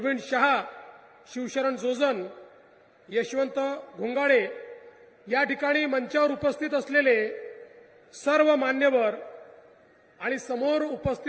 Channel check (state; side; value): identical; both; correlation 1.00